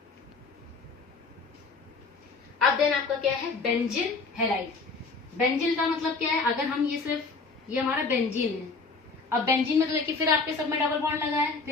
अब देन आपका क्या है, बेंजिल हैलाइड। बेंजिल का मतलब क्या है, अगर हम ये सिर्फ ये हमारा बेंजीन है, अब बेंजीन में तो देखिए फिर आपके सब में डबल बॉन्ड लगा है,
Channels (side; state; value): right; quieter; 4.2 dB